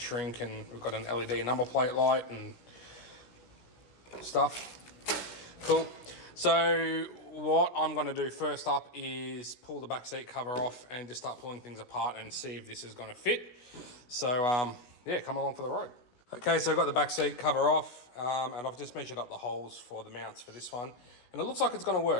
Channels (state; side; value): late; right; 16 ms